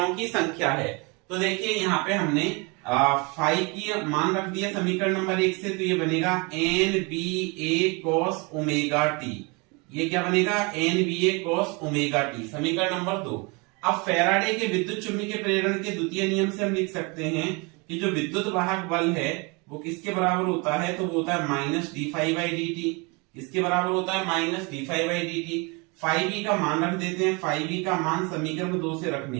की संख्या है। तो देखिए यहाँ पे हमने फाई की मान रख दिया समीकरण नंबर 1 से, तो ये बनेगा NBA cos ओमेगा टी। ये क्या बनेगा, NBA cos ओमेगा टी, समीकरण नंबर 2। अब फैराडे के विद्युत चुंबकीय प्रेरण के द्वितीय नियम से हम लिख सकते हैं कि जो विद्युत वाहक बल है वो किसके बराबर होता है, तो वो होता है minus D phi by D T. इसके बराबर होता है minus D phi by D T. Phi B का मान रख देते हैं, फाई बी का मान समीकरण 2 से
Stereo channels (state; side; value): quieter; left; 29.4 dB